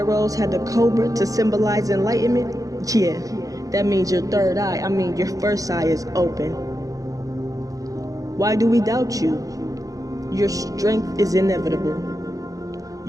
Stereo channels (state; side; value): late; left; 0.17 ms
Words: had the cobra to symbolize enlightenment. Yeah, that means your third eye, your first eye is open. Why do we doubt you? Your strength is inevitable.